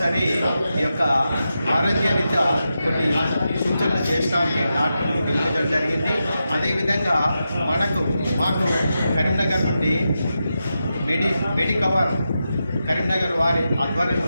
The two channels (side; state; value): both; inverted; correlation -0.89